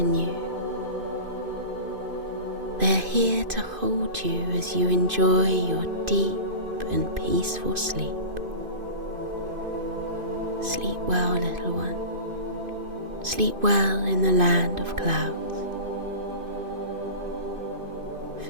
you. They are here to hold you as you enjoy your deep and peaceful sleep. Sleep well, little one. Sleep well in the land of clouds.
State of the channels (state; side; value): late; left; 2.5 ms